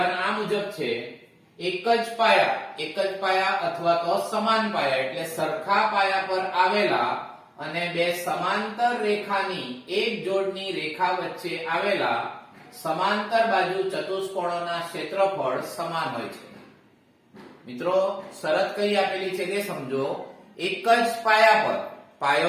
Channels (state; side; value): identical; both; correlation 1.00